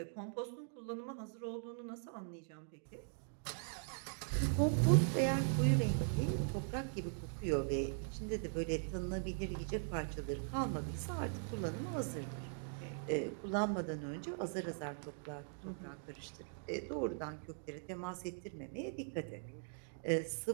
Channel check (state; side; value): silent; left; digital silence